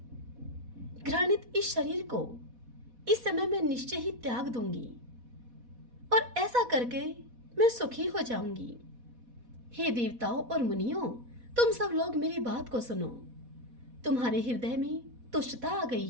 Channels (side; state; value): left; late; 4.1 ms